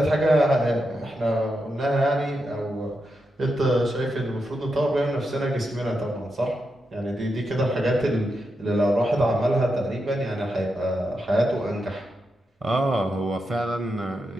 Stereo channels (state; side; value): normal; both; correlation 0.86